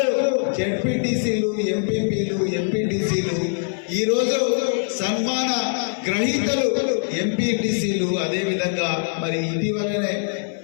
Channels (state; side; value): silent; right; 64 dB below the other